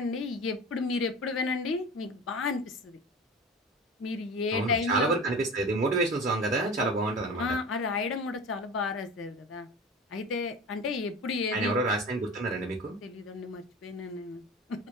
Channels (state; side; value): normal; both; correlation 0.34